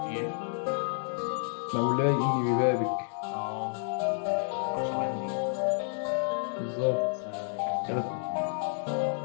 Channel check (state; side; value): silent; right; 58 dB below the other